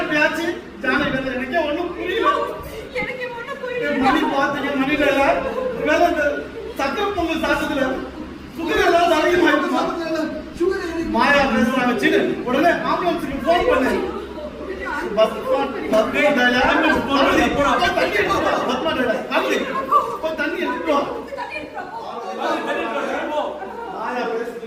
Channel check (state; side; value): identical; both; correlation 1.00